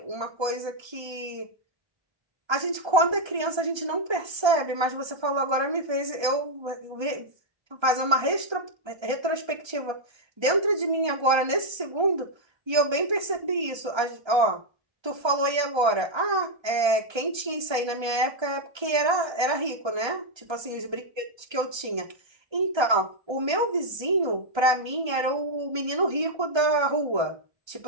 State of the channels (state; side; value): late; left; 1.3 ms